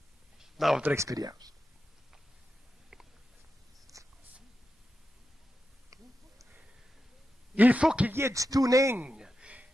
dans votre expérience. Il faut qu'il y ait du tuning.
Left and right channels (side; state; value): both; normal; correlation 0.90